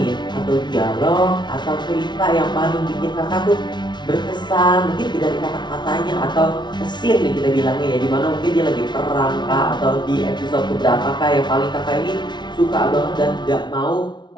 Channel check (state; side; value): late; right; 0.21 ms